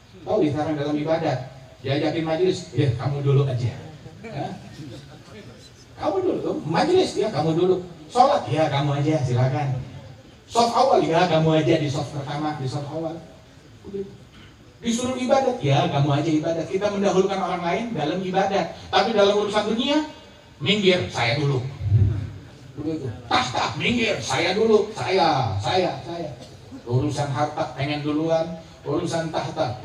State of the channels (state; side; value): identical; both; correlation 1.00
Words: Tahu isarnya dalam ibadat? Diajakin majelis, ya kamu dulu aja. Kamu dulu, majelis ya kamu dulu. Sholat ya kamu aja, silakan. Soft awal ya kamu aja di soft pertama, di soft awal. Disuruh ibadat ya kamu aja ibadat. Kita mendahulukan orang lain dalam ibadat, tapi dalam urusan dunia, minggir saya dulu. Begitu. Tahta minggir saya dulu, saya. Urusan harta pengen duluan, urusan tahta